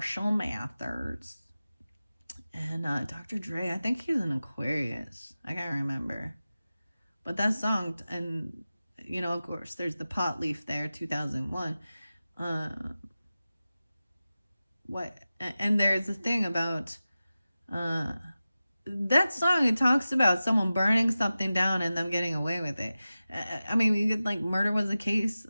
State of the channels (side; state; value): both; inverted; correlation -0.95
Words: Mathers. And Dr. Dre, I think he's an Aquarius. I can't remember. But that song, and, of course, there's the pot leaf there, 2001. And there's a thing about that song. It talks about someone burning something down and them getting away with it. Murder was a case